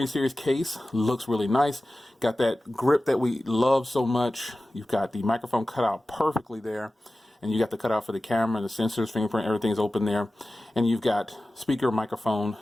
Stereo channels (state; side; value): normal; both; correlation 0.95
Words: series case looks really nice. Got that grip that we love so much. You've got the microphone cut out perfectly there. And you got the cutout for the camera, the sensors, fingerprint, everything's open there. And you've got speaker, microphone,